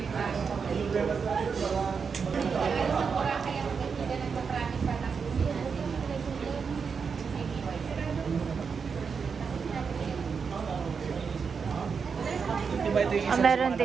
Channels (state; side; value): quieter; left; 5.8 dB